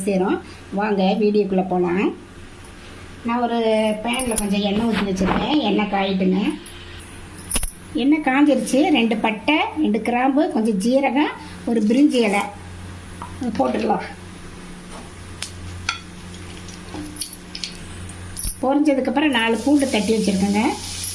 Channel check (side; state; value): both; identical; correlation 1.00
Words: சேரும். வாங்க வீடியோக்குள்ளே போகலாம். நான் ஒரு பேனில் கொஞ்சம் எண்ணெய் ஊற்றி வச்சுருக்கேன். எண்ணெய் காயிட்டுங்க. எண்ணெய் காஞ்சிருச்சு. 2 பட்டை, 2 கிராம்பு, கொஞ்சம் ஜீரகம், ஒரு பிரிஞ்சி இலை போட்டுடலாம். பொரிஞ்சதுக்கப்புறம் 4 பூண்டு தட்டி வச்சுருக்கேங்க.